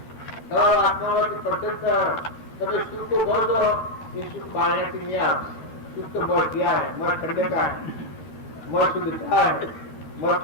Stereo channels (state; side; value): late; right; 13 ms